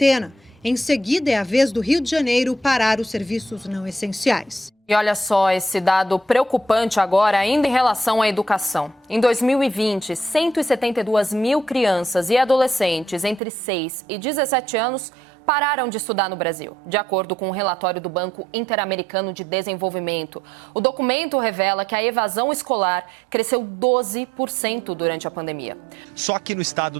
Em seguida, é a vez do Rio de Janeiro parar os serviços não essenciais. E olha só esse dado preocupante agora, ainda em relação à educação. Em 2020, 172 mil crianças e adolescentes entre 6 e 17 anos pararam de estudar no Brasil, de acordo com um relatório do Banco Interamericano de Desenvolvimento. O documento revela que a evasão escolar cresceu 12% durante a pandemia. Só aqui no estado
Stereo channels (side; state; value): left; drops out; at 13.4 s